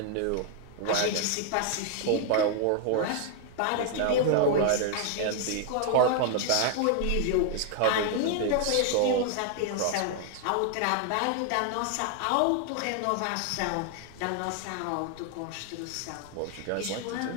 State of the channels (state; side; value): different; both; correlation 0.00